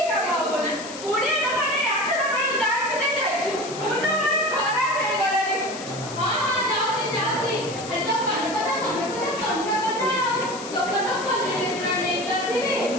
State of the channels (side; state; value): left; noise; hiss, 13 dB below the sound